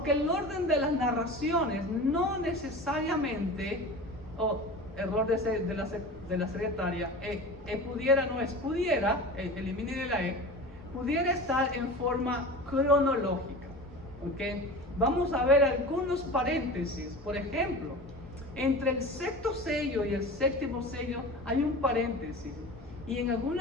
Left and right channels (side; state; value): both; normal; correlation 0.33